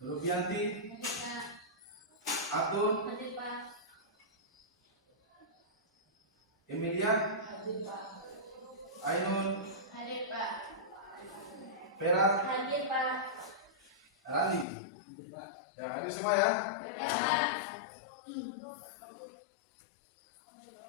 Rubianti, Hadir Pak. Atun, Hadir Pak. Emilia, Hadir Pak. Ainun, Hadir Pak. Vera, Hadir Pak. Rani. Ya, hadir semua ya. Ya Pak.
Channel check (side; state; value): right; drops out; at 14.7 s